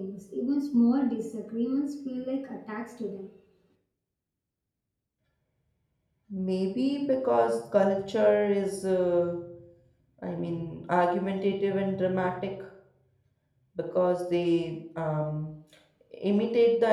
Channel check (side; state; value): both; identical; correlation 1.00